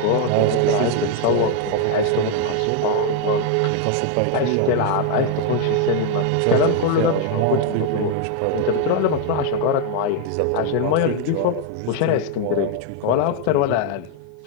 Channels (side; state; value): both; different; correlation 0.01